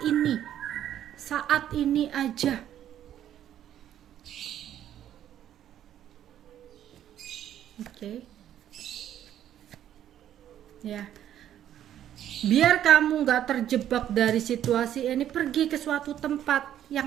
ini aja. Oke. Ya, biar kamu nggak terjebak dari situasi ini, pergi ke suatu tempat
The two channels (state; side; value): quieter; left; 11.0 dB